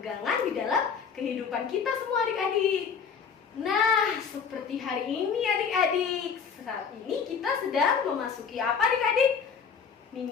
di dalam kehidupan kita semua adik-adik. Nah, seperti hari ini adik-adik, saat ini kita sedang memasuki apa adik-adik?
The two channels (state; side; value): quieter; right; 6.4 dB